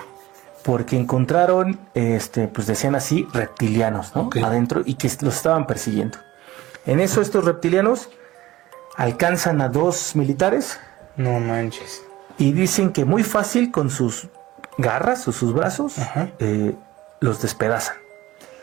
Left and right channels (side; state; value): left; quieter; 16.9 dB